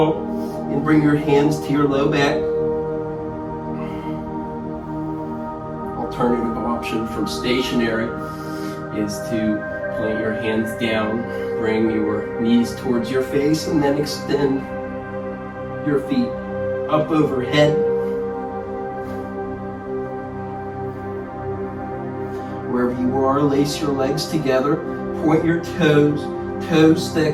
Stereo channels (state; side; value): identical; both; correlation 1.00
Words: and bring your hands to your low back. Alternative option from stationary is to plant your hands down, bring your knees towards your face, and then extend your feet up overhead. Wherever you are, lace your legs together, point your toes, toes